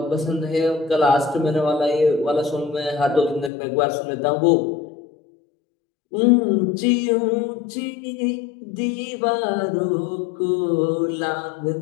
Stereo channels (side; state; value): right; drops out; at 3.5 s